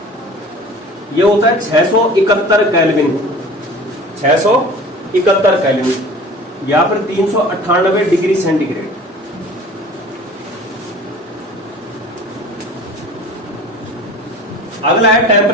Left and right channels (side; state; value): both; normal; correlation 0.42